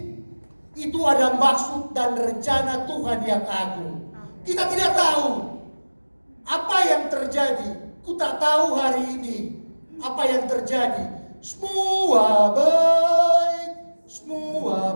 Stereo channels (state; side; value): inverted; both; correlation -1.00